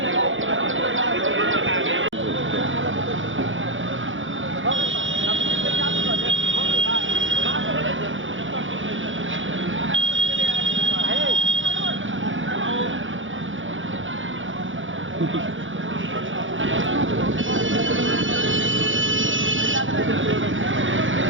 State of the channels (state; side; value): late; left; 0.56 ms